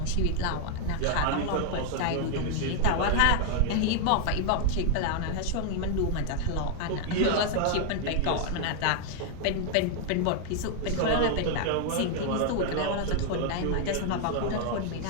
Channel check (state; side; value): different; both; correlation 0.00